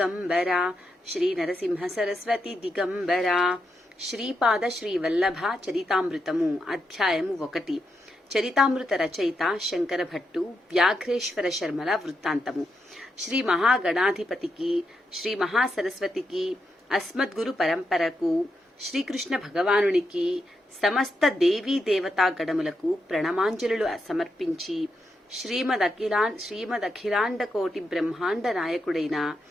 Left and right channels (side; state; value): both; normal; correlation 0.84